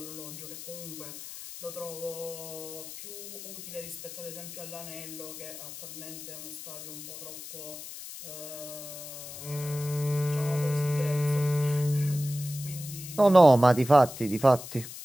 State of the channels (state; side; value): noise; left; hiss, 11 dB below the sound